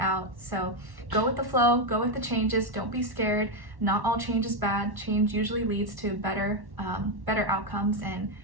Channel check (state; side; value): late; left; 1.1 ms